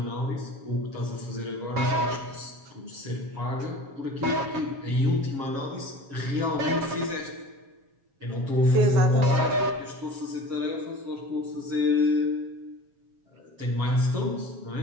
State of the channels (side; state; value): left; late; 7.3 ms